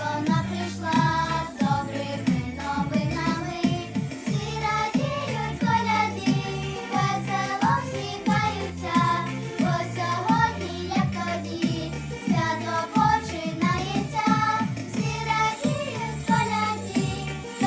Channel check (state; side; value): identical; both; correlation 1.00